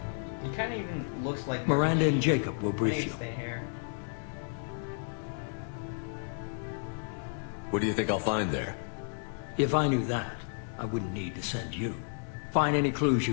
He kind of even looks like Martin Miranda and Sheen. Jacob will I brief think you. it's the hair. What do you think I'll find there? If I knew that, I wouldn't need to send you. Find any clues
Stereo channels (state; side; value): silent; right; digital silence